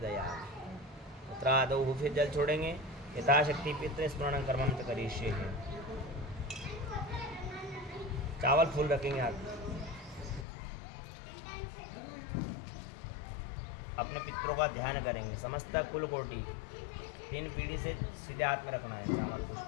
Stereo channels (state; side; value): drops out; right; at 10.5 s